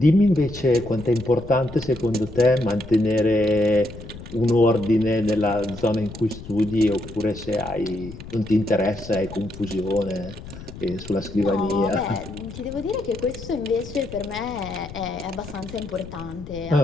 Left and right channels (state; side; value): noise; left; rumble, 14 dB below the sound